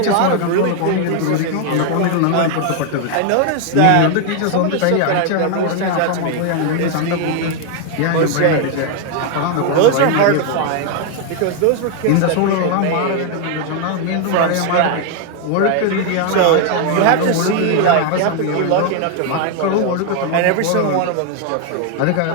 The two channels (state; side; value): different; both; correlation 0.01